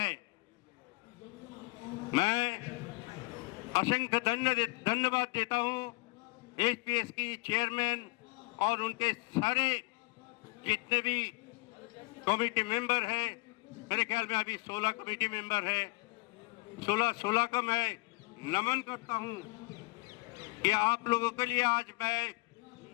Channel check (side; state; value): right; quieter; 25.4 dB